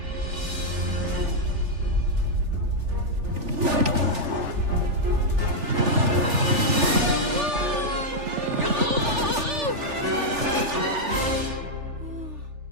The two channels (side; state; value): left; late; 3.4 ms